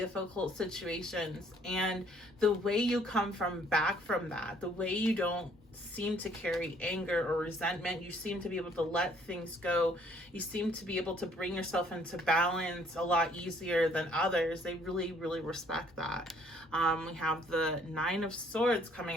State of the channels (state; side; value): normal; both; correlation 0.62